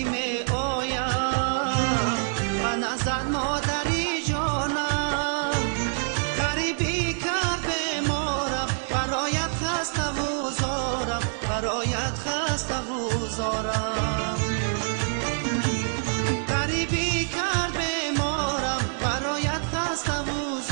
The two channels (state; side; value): silent; left; digital silence